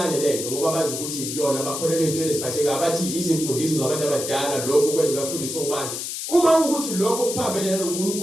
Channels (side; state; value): left; noise; hiss, 5 dB below the sound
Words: lento ngoba bazi ukuthi yona bakholelwe into eziphatheka abathi izimfundiso zabantu abadala lokho kwenza bafundisa ubani. Uma ukuthi lokho kuphambene